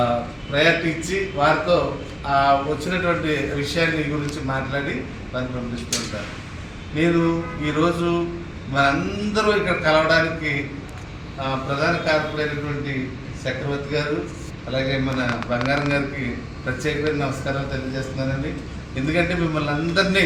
ప్రయారిటీ ఇచ్చి వారితో వచ్చినటువంటి విషయాన్ని గురించి మాట్లాడి వారిని పంపిస్తూ ఉంటారు. నేను ఈరోజు మనందరూ ఇక్కడ కలవడానికి ప్రధాన కారకులైనటువంటి చక్రవర్తి గారు అలాగే మన బంగారం గారికి ప్రత్యేకమైన నమస్కారాలు తెలియజేస్తున్నానండి. ఎందుకంటే మిమ్మల్ని అందరినీ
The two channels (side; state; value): both; identical; correlation 1.00